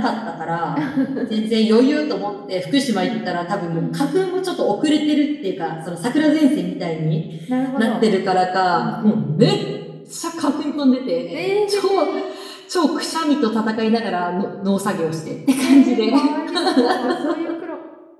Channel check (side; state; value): both; identical; correlation 1.00